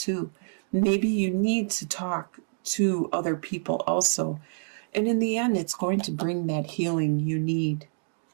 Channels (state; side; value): silent; left; digital silence